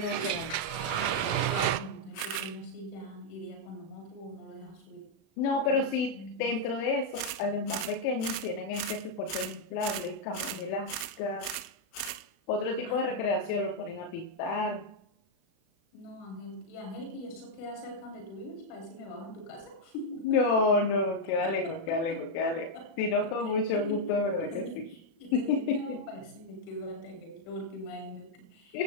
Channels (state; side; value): late; right; 36 ms